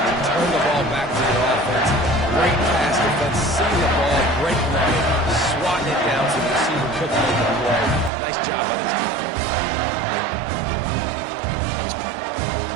turn the ball back to your offense. Great pass defense, seeing the ball, breaking on it, swatting it down to the receiver, cooking on the play. Nice job by this defense.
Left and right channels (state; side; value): drops out; left; at 8.1 s